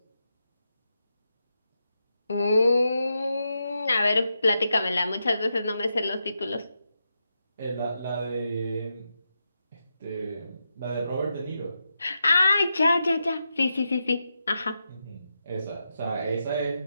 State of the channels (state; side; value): inverted; both; correlation -0.86